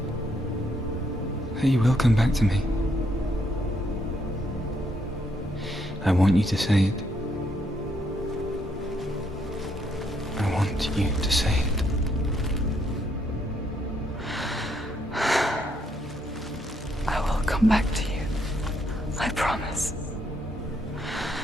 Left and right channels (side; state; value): both; normal; correlation 0.74